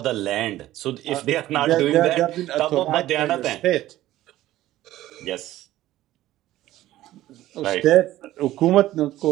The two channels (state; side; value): quieter; left; 14.8 dB